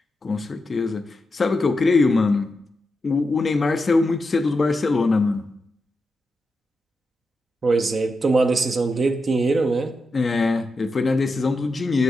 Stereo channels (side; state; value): both; normal; correlation 0.88